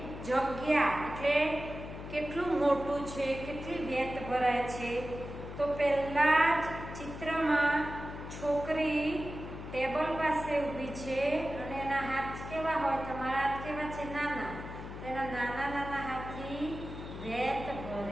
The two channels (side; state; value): left; noise; hum, 10 dB below the sound